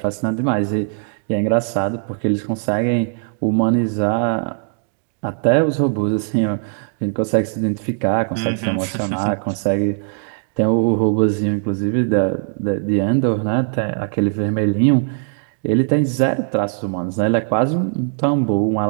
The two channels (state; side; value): silent; left; digital silence